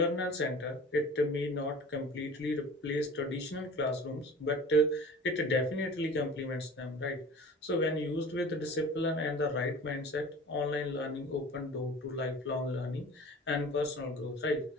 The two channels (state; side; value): normal; both; correlation 0.41